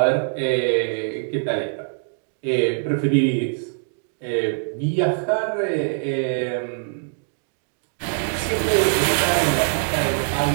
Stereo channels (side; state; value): left; silent; digital silence